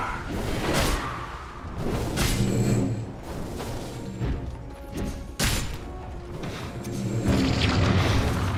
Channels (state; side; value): identical; both; correlation 1.00